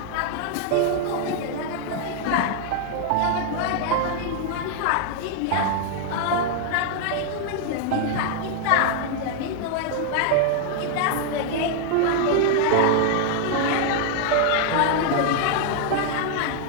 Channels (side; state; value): both; different; correlation 0.00